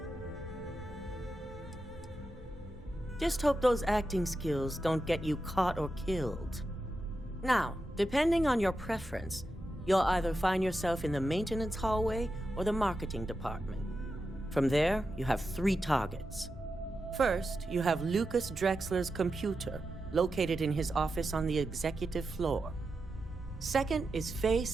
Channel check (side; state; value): both; normal; correlation 0.89